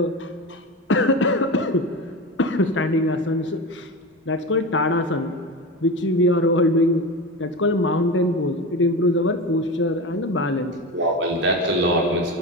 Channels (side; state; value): both; normal; correlation 0.24